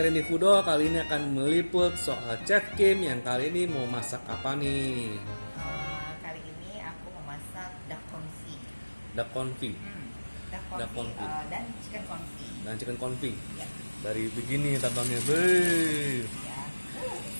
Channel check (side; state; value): both; inverted; correlation -1.00